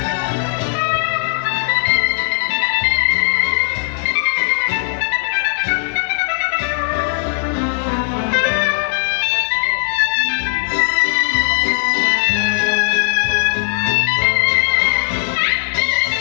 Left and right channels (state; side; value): silent; right; digital silence